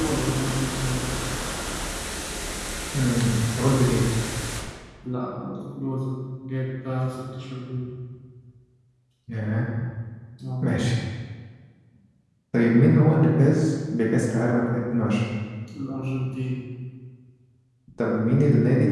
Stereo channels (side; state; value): both; identical; correlation 1.00